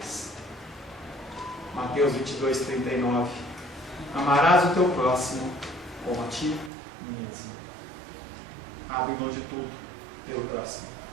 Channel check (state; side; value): drops out; left; at 6.7 s